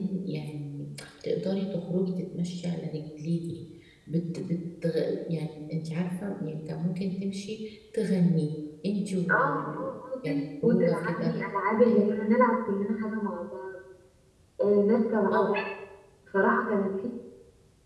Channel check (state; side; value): identical; both; correlation 1.00